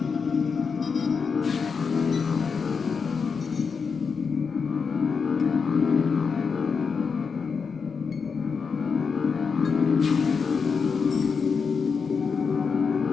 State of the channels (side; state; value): right; quieter; 5.6 dB